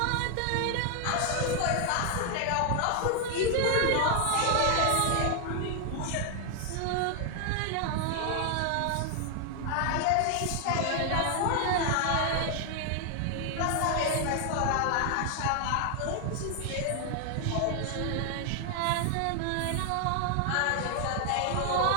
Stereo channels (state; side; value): different; both; correlation 0.00